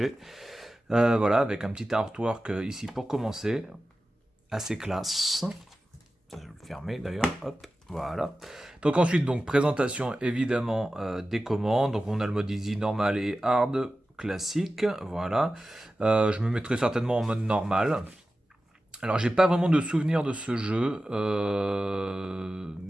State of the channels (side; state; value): both; normal; correlation 0.94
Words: Voilà, avec un petit artwork ici pour commencer, assez classe. Je vais le fermer d'ailleurs, hop, voilà. Donc ensuite, donc présentation évidemment des commandes. Donc on a le mode easy, normal et hard, classique, voilà. Je me mettrai certainement en mode normal. Alors j'ai pas vraiment de souvenir de ce jeu,